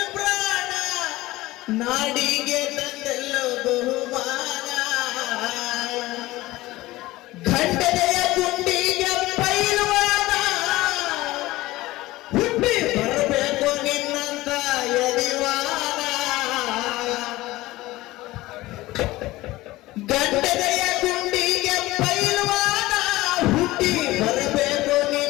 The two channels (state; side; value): quieter; right; 18.4 dB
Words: ಪ್ರಾಣ, ನಾಡಿಗೆ ತಂದೆಲ್ಲ ಬಹುಮಾನ, ಖಂಡನೆಯ ಗುಂಡಿಗೆ ಪೈಲ್ವಾನ, ಹುಟ್ಟಿ ಬರಬೇಕು ನಿನ್ನಂತ ಯದಿವಾನ. ಗಂಡನೆಯ ಗುಂಡಿಗೆ ಪೈಲ್ವಾನ, ಹುಟ್ಟಿ ಬರಬೇಕು